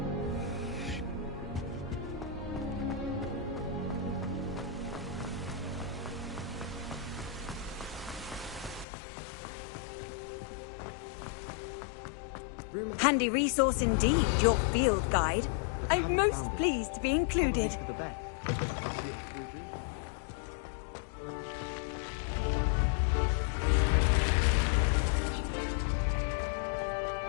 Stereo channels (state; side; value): drops out; right; at 8.8 s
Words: Handy resource indeed, your field guide. I'm most pleased to be included.